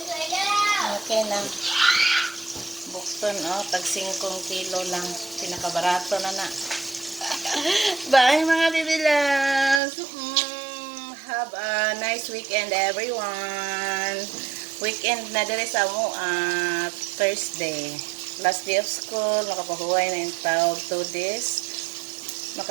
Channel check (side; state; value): left; drops out; at 9.8 s